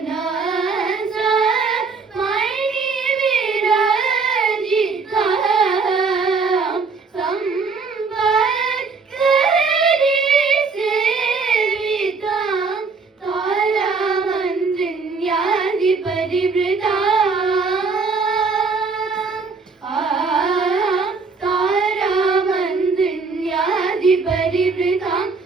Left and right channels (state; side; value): quieter; left; 4.6 dB